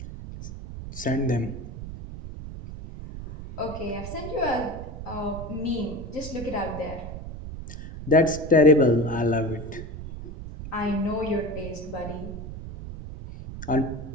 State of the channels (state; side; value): noise; right; rumble, 10 dB below the sound